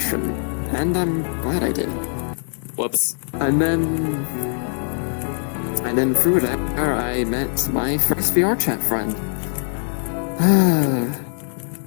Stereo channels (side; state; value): right; silent; 61 dB below the other